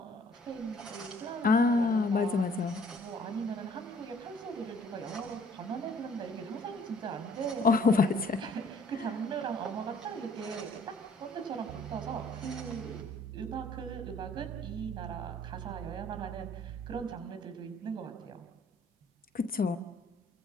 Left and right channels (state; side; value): normal; both; correlation 0.58